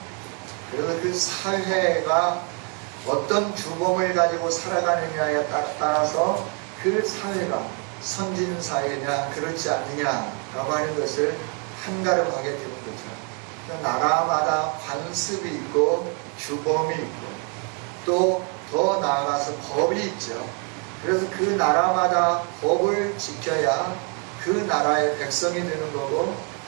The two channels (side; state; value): left; quieter; 37.1 dB